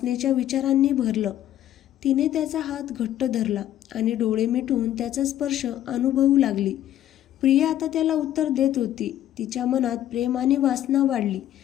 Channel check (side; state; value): right; quieter; 12.2 dB